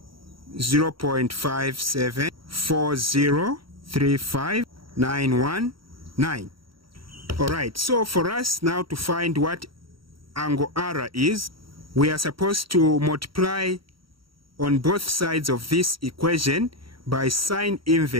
0.5740359119. Alright, so for us now to find what angle R is, we are supposed to multiply on both sides of this equation by sine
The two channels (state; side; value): late; left; 0.74 ms